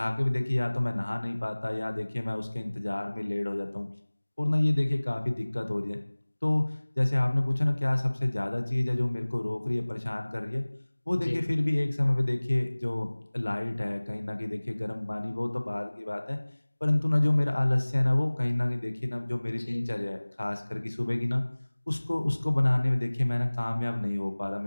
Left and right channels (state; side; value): inverted; both; correlation -1.00